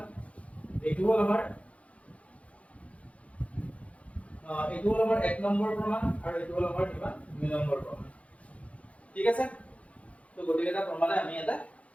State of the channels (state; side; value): late; right; 0.064 ms